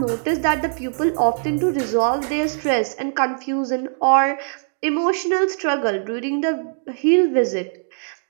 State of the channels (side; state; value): left; silent; digital silence